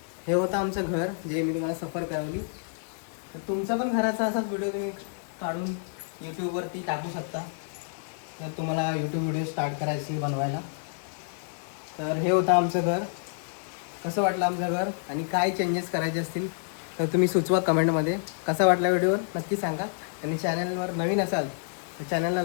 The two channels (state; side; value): silent; right; digital silence